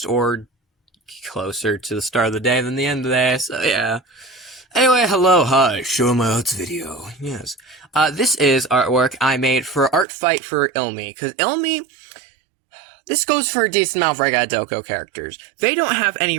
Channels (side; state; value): left; drops out; at 10.1 s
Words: or closer to the start of the day than the end of the day, so yeah. Anyway, hello, hi, show my arts video, yes. This is artwork I made for Art Fight for Ilmi, because Ilmi, this goes for a decent amount of Regadoko characters. They don't have any